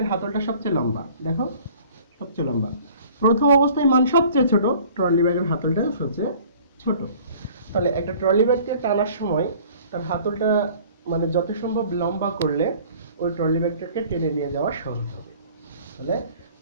হাতলটা সবচেয়ে লম্বা, দেখো সবচেয়ে লম্বা। প্রথম অবস্থায় মান সবচেয়ে ছোট, ট্রলি ব্যাগের হাতলটা সবচেয়ে ছোট। তাহলে একটা ট্রলি ব্যাগকে টানার সময় তার হাতলটা মানে যত সম্ভব লম্বা করলে ওই ট্রলি ব্যাগটাকে টেনে নিয়ে যাওয়া সহজ হবে। তাহলে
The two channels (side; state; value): both; inverted; correlation -0.50